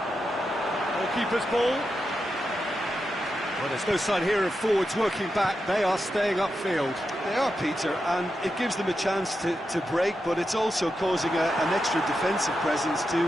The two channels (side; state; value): both; normal; correlation 0.88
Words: Goalkeeper's ball. Well, there's no sign here of forwards working back. They are staying upfield. They are, Peter, and it gives them a chance to break, but it's also causing an extra defensive presence